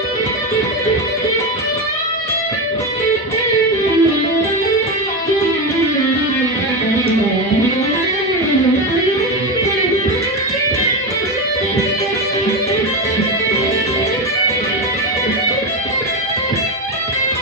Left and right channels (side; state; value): both; normal; correlation 0.15